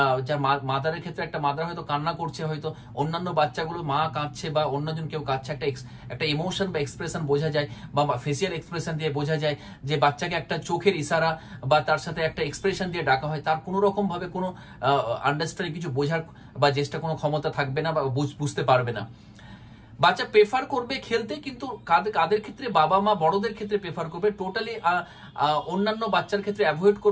যার মাদারের ক্ষেত্রে একটা মাদার হয়তো কান্না করছে, হয়তো অন্যান্য বাচ্চাগুলো মা কাঁদছে বা অন্যজন কেউ কাঁদছে, একটা ইমোশন বা এক্সপ্রেশন বোঝা যায়, বা ফেসিয়াল এক্সপ্রেশন দিয়ে বোঝা যায় যে বাচ্চাকে একটা চোখের ইশারা বা তার সাথে একটা এক্সপ্রেশন দিয়ে ডাকা হয়, তার কোনো রকম ভাবে কোনো আন্ডারস্ট্যান্ডিং কিছু বোঝার বা চেষ্টা কোনো ক্ষমতা থাকবে না বা বুঝতে পারবে না। বাচ্চা প্রেফার করবে খেলতে, কিন্তু কাদের ক্ষেত্রে, বাবা মা বড়দের ক্ষেত্রে প্রেফার করবে, টোটালি অন্যান্য বাচ্চার ক্ষেত্রে অ্যাভয়েড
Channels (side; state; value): both; identical; correlation 1.00